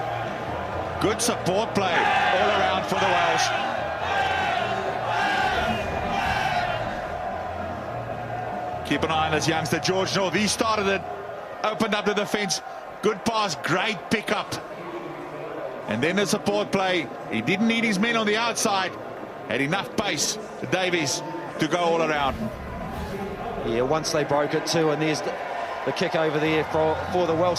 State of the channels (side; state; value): both; identical; correlation 1.00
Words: Good support play all around for the Welsh. Keep an eye on this youngster, George North. He started it, opened up the defence. Good pass, great pickup. And then the support play. He didn't need his men on the outside. Had enough pace, Davies, to go all around. Yeah, once they broke it too, and there's the kick over there for the Welsh